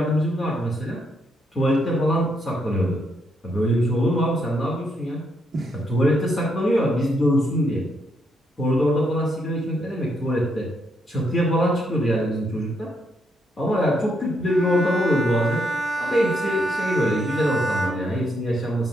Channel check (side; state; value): both; normal; correlation 0.77